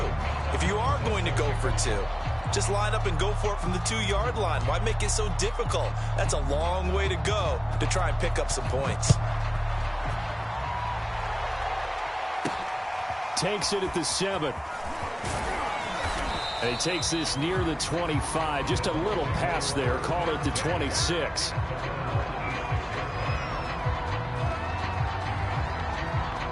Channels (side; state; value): both; identical; correlation 1.00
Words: if you are going to go for 2, just line up and go for it from the 2-yard line. Why make it so difficult? That's a long way to go to try and pick up some points. Takes it at the 7. And he takes this near the 25. Just a little pass there. Call it the 26.